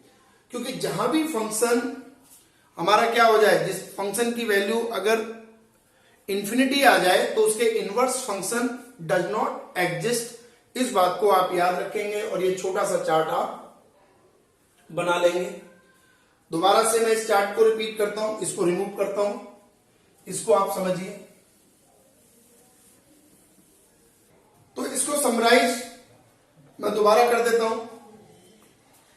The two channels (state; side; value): identical; both; correlation 1.00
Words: क्योंकि जहां भी फंक्शन हमारा क्या हो जाए, जिस फंक्शन की वैल्यू अगर इंफिनिटी आ जाए तो उसके inverse function does not exist. इस बात को आप याद रखेंगे और ये छोटा सा चार्ट आप बना लेंगे। दोबारा से मैं इस चार्ट को रिपीट करता हूं, इसको रिमूव करता हूं, इसको आप समझिए। तो इसको समराइज मैं दोबारा कर देता हूं।